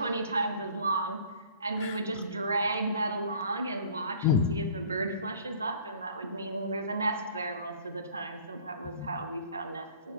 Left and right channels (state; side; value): inverted; both; correlation -0.50